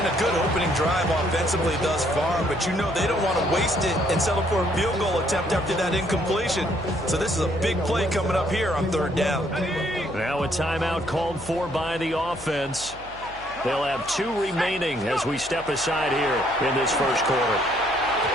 a good opening drive offensively thus far, but you know they don't want to waste it and settle for a field goal attempt after that incompletion. So this is a big play coming up here on 3rd down. Now a timeout called for by the offense. They'll have 2 remaining as we step aside here in this first quarter.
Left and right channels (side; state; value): left; noise; hum, 20 dB below the sound